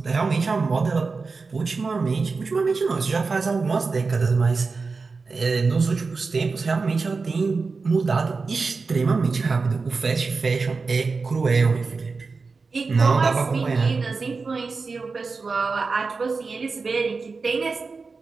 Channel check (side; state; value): left; quieter; 4.4 dB